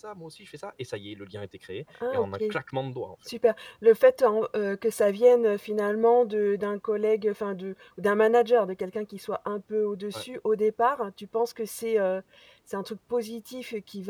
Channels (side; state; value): both; identical; correlation 1.00